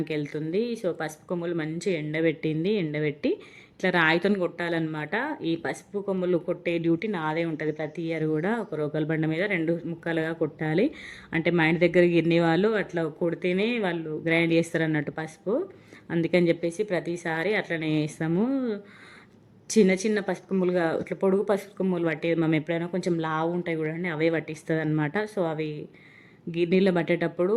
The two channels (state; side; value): identical; both; correlation 1.00